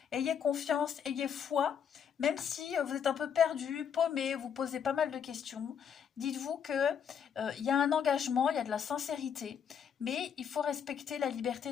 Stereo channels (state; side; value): quieter; right; 7.8 dB